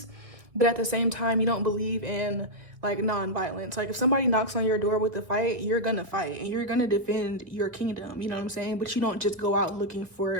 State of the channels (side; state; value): left; late; 2.1 ms